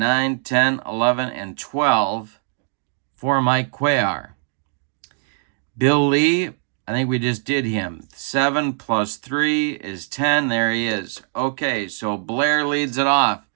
10, 11, and 12 for Mike Cuellar. Bill Lee, I think we just did him. 7 plus 3 is 10. There he is. Okay, so Blair leads it off.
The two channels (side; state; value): left; silent; 59 dB below the other